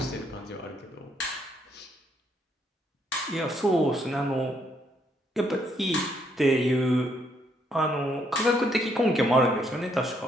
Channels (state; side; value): normal; both; correlation 0.72